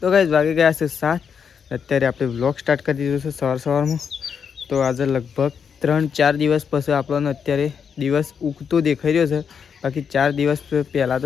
ગાઈઝ વાગી ગયા છે 7. અત્યારે આપણે વ્લોગ સ્ટાર્ટ કરી દીધો છે સવારમાં. તો આજે લગભગ 3-4 દિવસ પછી આપણને અત્યારે દિવસ ઉગતો દેખાઈ રહ્યો છે. બાકી 4 દિવસ પહેલાં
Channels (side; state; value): right; quieter; 6.9 dB